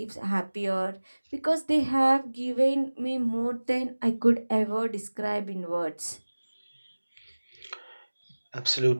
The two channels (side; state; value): both; inverted; correlation -1.00